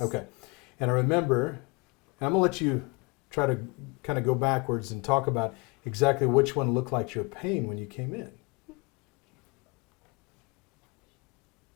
Okay. And I remember, and I'm going to let you try to kind of go backwards and talk about exactly which one looked like your pain when you came in.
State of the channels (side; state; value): right; quieter; 28.8 dB